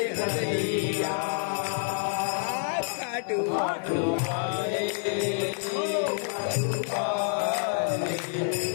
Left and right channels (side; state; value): right; silent; 59 dB below the other